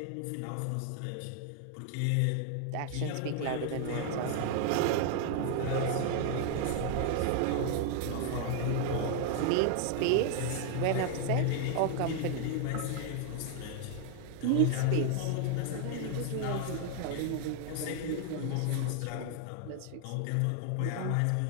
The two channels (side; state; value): both; different; correlation 0.00